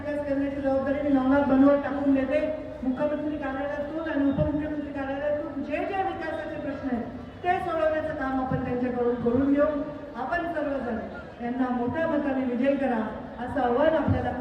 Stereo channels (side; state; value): both; identical; correlation 1.00